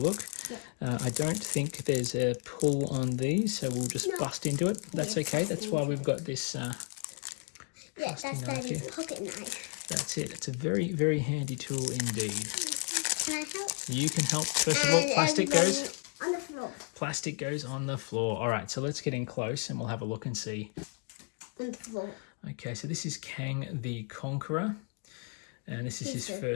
Yeah. I don't think there's a pull on these, so we'll just bust into it. That's okay. That's why we've got this. Yeah, that's Daddy's pocket knife. That's it. It's a very, very handy tool indeed. Can I help? You can help. First of all, plastic goes on the floor. Plastic goes on the floor. All right, so let's get in close and we'll have a look and see And 4. Okay, so this is Kang the Conqueror. And this is his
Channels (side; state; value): right; quieter; 38.8 dB